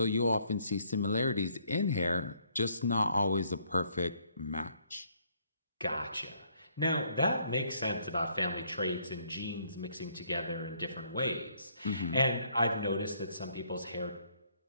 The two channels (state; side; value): inverted; both; correlation -0.67